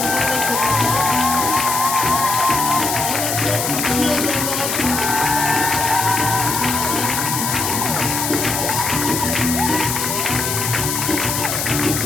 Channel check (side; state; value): left; noise; hiss, 1 dB below the sound